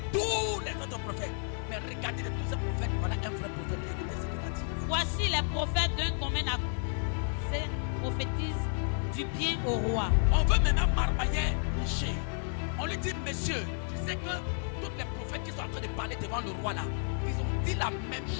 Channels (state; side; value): silent; right; 57 dB below the other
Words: tous les autres prophètes. Mais regardez de tous ces prophètes, voilà un vrai prophète. Écoutez ce qu'il a dit. Voici les prophètes d'un commun accord. Ils prophétisent du bien au roi. On veut maintenant marmailler Michée. On lui dit, monsieur, tu sais que tous les prophètes qui sont en train de parler devant le roi là, ils ont dit la même